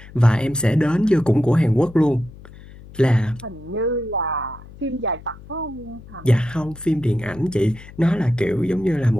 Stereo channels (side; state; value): left; noise; hum, 19 dB below the sound